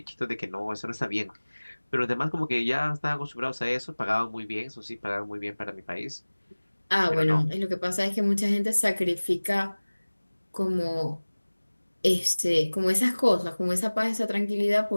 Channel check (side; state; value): both; inverted; correlation -1.00